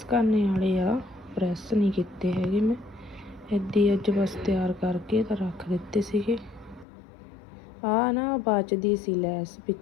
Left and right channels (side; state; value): right; drops out; at 6.9 s